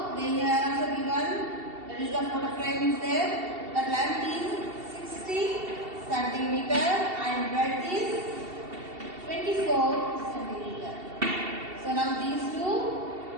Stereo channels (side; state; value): left; late; 2.7 ms